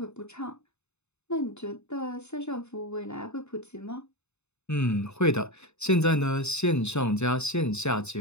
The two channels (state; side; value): late; right; 0.81 ms